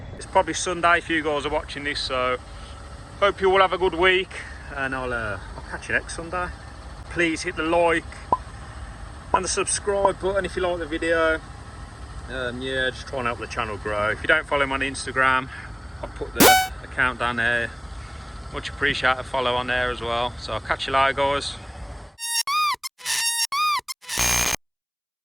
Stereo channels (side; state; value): both; identical; correlation 1.00